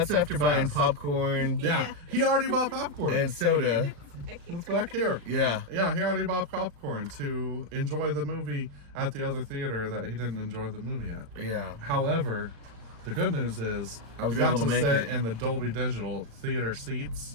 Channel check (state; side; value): late; left; 35 ms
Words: after buying Fast. popcorn Yeah, he already bought popcorn. and soda. It's back here. Yeah. Yeah, he already bought popcorn to enjoy the movie at the other theater that he didn't enjoy the movie at. Yeah. However, the good news is I was we got able to make sit it. in the Dolby Digital theater seats,